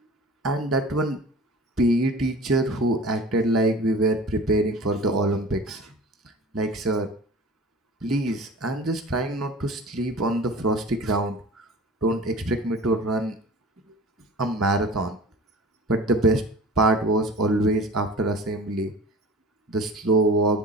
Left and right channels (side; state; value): both; normal; correlation 0.39